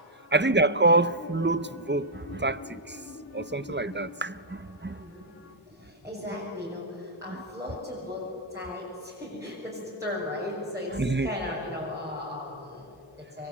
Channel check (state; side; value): normal; both; correlation -0.05